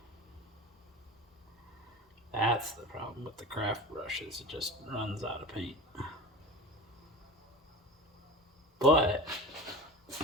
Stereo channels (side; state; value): both; normal; correlation 0.32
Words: That's the problem with the craft brushes. It just runs out of paint. But